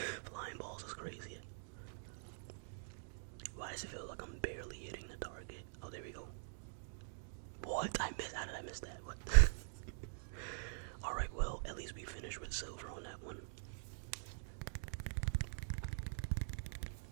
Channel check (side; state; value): left; silent; digital silence